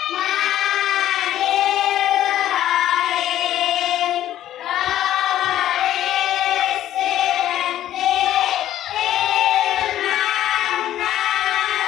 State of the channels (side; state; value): right; quieter; 12.4 dB